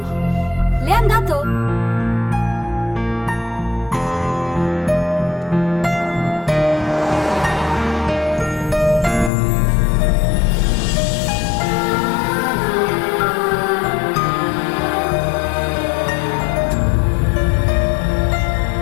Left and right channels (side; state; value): right; drops out; at 9.3 s